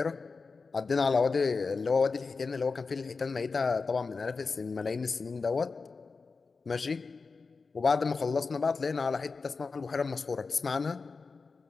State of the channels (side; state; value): right; quieter; 4.5 dB